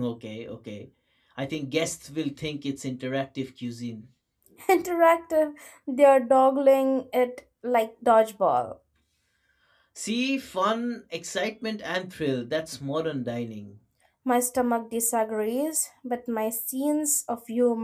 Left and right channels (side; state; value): both; identical; correlation 1.00